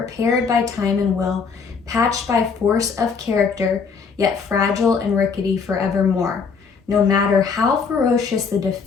by time and will, patched by force of character, yet fragile and rickety forevermore. No matter how ferocious the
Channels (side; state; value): right; quieter; 5.5 dB